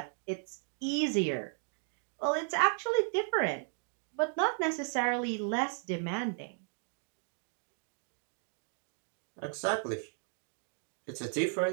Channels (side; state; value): left; silent; 54 dB below the other